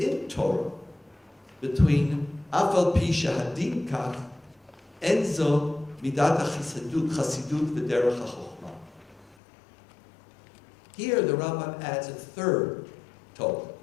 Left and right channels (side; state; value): right; drops out; at 9.3 s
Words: Torah, between Afal Pi Shahadin Kach, Enzo Midat Chasidut V'Derech HaChochma. Here the Rambam adds a third Torah.